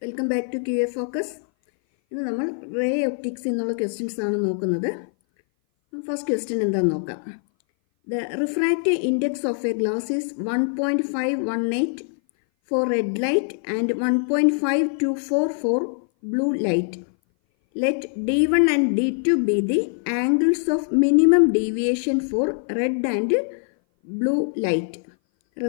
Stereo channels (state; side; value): silent; right; 58 dB below the other